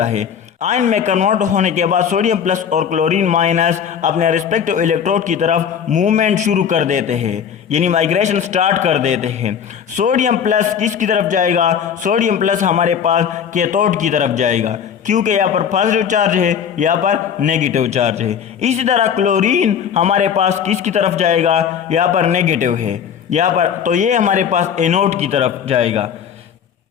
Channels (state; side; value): quieter; right; 8.0 dB